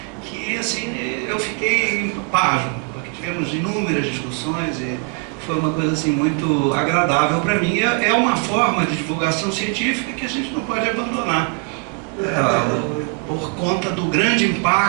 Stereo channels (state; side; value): quieter; left; 34.5 dB